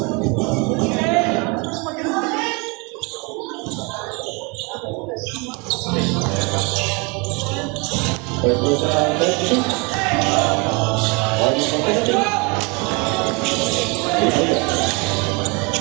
First person, 32. Audience competitive.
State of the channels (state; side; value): quieter; left; 30.1 dB